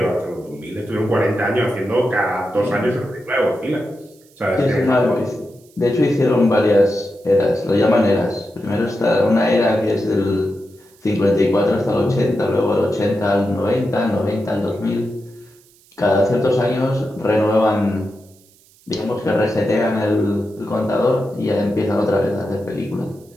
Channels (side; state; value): right; noise; hiss, 29 dB below the sound